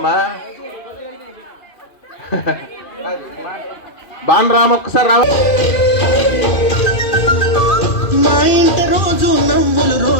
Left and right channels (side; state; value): right; late; 2.7 ms